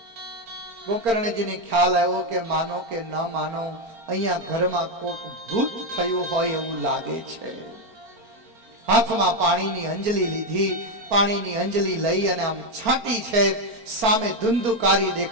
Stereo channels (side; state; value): left; late; 4.4 ms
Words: ગોકર્ણજીને ખ્યાલ આવ્યો કે માનો કે ન માનો અહીંયા ઘરમાં કોક ભૂત થયું હોય એવું લાગે છે. હાથમાં પાણીની અંજલિ લીધી. પાણીની અંજલિ લઈ અને આમ છાંટી છે. સામે ધુંધુકારી